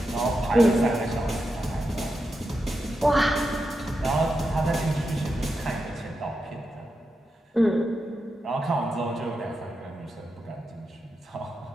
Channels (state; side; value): normal; both; correlation 0.88